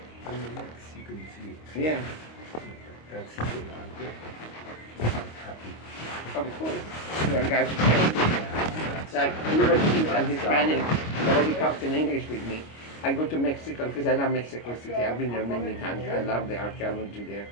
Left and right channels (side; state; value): right; late; 25 ms